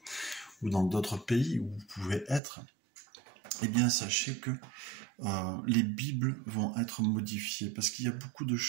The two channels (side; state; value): left; drops out; at 2.4 s